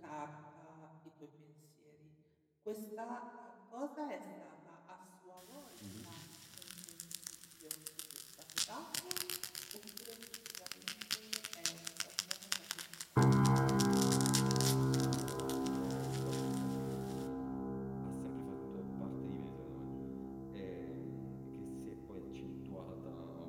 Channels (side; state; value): both; identical; correlation 1.00